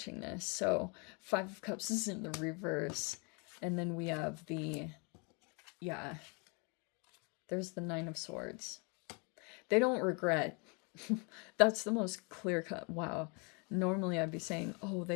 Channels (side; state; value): right; quieter; 33.0 dB